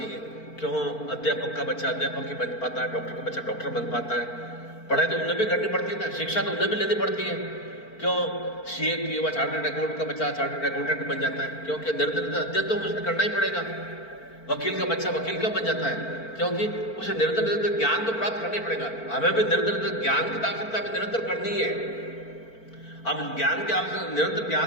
क्यों अध्यापक का बच्चा अध्यापक ही बन पाता है, डॉक्टर का बच्चा डॉक्टर बन पाता है। पढ़ाई तो उन्हें भी करनी पड़ती है ना, शिक्षा तो उन्हें भी लेनी पड़ती है। क्यों सीए की वह चार्टर्ड अकाउंटेंट का बच्चा चार्टर्ड अकाउंटेंट बन जाता है? क्योंकि निरंतर अध्ययन तो उसे करना ही पड़ेगा। वकील का बच्चा वकील क्यों बन जाता है? क्योंकि उसे निरंतर निरंतर ज्ञान तो प्राप्त करना ही पड़ेगा। हमें भी निरंतर ज्ञान की आवश्यकता भी निरंतर करनी है। हम ज्ञान के आवश्यक निरंतर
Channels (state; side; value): late; right; 4.4 ms